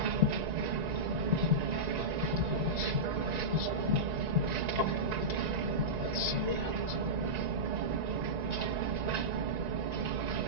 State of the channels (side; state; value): left; late; 1.9 ms